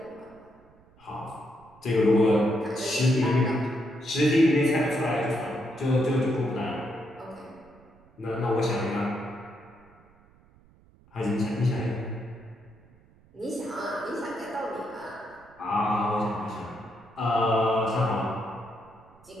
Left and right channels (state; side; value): noise; right; rumble, 28 dB below the sound